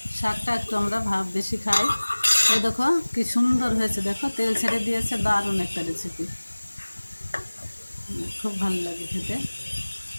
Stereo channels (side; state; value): both; inverted; correlation -1.00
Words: শাকটা একটু আমরা বেশি খাই। এই দেখো কি সুন্দর হয়েছে, দেখো তেল ছেড়ে দিয়েছে। দারুণ একটা রেসিপি, খুব ভালো লাগে খেতে।